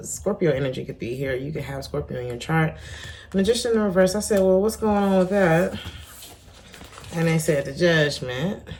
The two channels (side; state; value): both; identical; correlation 1.00